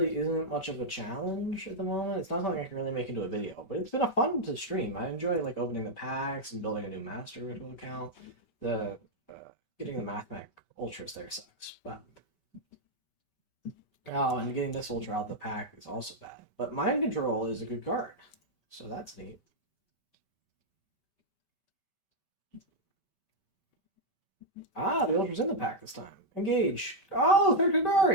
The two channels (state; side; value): late; right; 5.1 ms